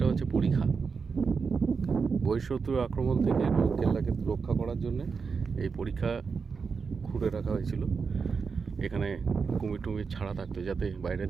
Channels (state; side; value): quieter; left; 5.3 dB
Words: হচ্ছে পরীক্ষা। বহিঃশত্রুর আক্রমণ থেকে কেল্লাকে রক্ষা করার জন্য এই পরীক্ষা খুঁড়ে রাখা হয়েছিল। এখানে কুমির টুমির ছাড়া থাকতো, যাতে